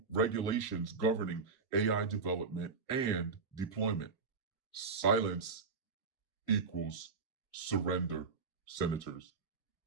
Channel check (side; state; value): left; quieter; 4.7 dB